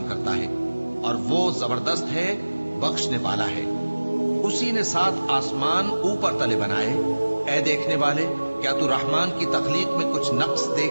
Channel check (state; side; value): inverted; both; correlation -1.00